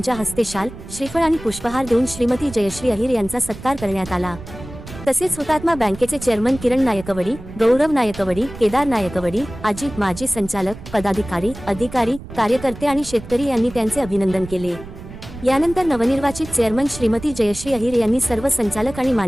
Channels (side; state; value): right; noise; rumble, 14 dB below the sound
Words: हस्ते शाल, श्रीफळ आणि पुष्पहार देऊन श्रीमती जयश्री अहिर यांचा सत्कार करण्यात आला। तसेच हुतात्मा बँकेचे चेअरमन किरण नायकवडी, गौरव नायकवडी, केदार नायकवडी, अजित माजी संचालक, पदाधिकारी, अधिकारी, कार्यकर्ते आणि शेतकरी यांनी त्यांचे अभिनंदन केले। यानंतर नवनिर्वाचित चेअरमन श्रीमती जयश्री अहिर यांनी सर्व संचालक आणि